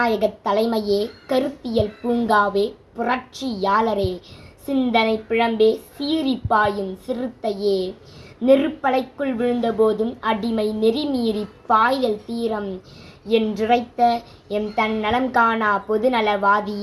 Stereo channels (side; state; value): both; identical; correlation 1.00